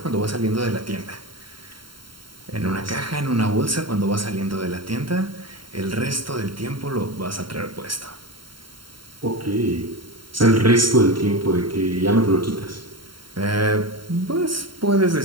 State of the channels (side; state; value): left; late; 0.73 ms